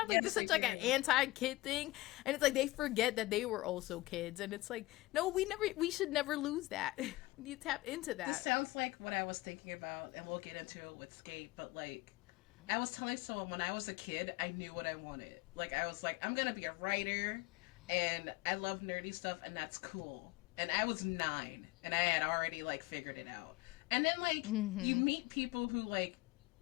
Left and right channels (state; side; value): quieter; right; 20.3 dB